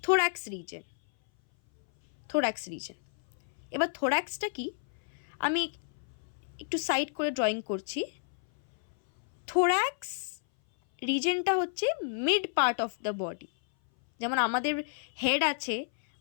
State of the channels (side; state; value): right; silent; 57 dB below the other